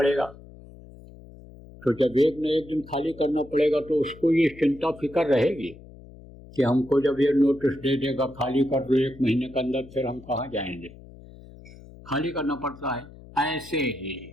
तो जब एक न एक दिन खाली करना पड़ेगा तो उसको ये चिंता फिक्र रहेगी कि हमको जब ये नोटिस दे देगा खाली कर दो 1 महीने के अंदर, फिर हम कहाँ जाएंगे, खाली करना पड़ता है। ऐसे ही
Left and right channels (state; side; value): noise; left; hum, 19 dB below the sound